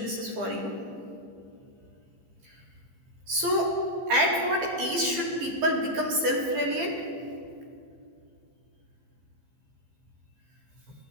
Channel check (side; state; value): left; late; 15 ms